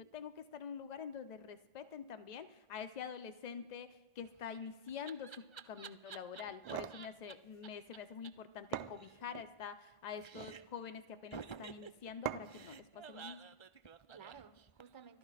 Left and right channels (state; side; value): late; right; 1.3 ms